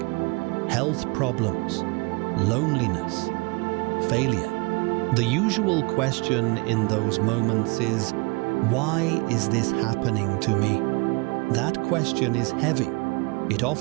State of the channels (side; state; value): left; quieter; 28.2 dB